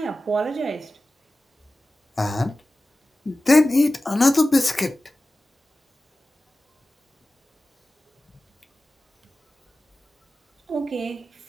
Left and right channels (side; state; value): both; normal; correlation 0.96